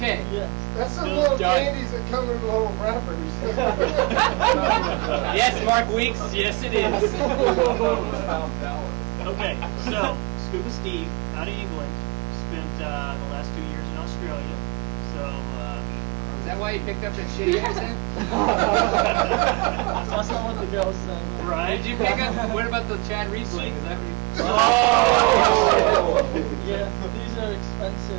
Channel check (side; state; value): left; quieter; 27.1 dB